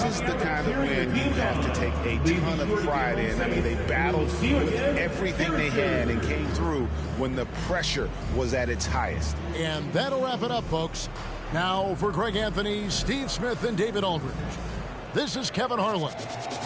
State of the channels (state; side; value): identical; both; correlation 1.00